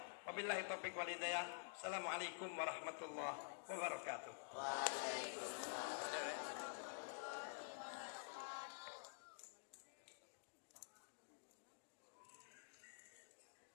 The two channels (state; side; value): silent; right; digital silence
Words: Wabillahi taufiq wal hidayah. Assalamualaikum warahmatullahi wabarakatuh.